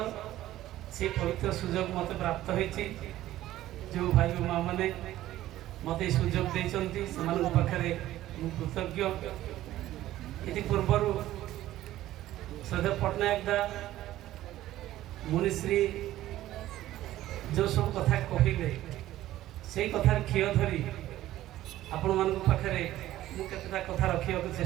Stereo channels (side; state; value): left; quieter; 14.5 dB